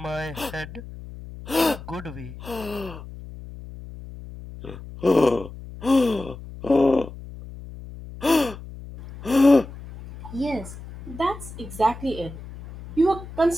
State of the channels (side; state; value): left; noise; hum, 14 dB below the sound